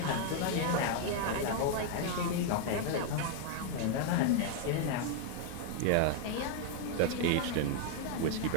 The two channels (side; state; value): both; different; correlation 0.00